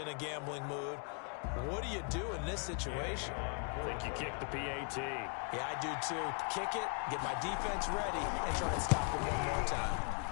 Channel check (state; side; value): quieter; right; 36.2 dB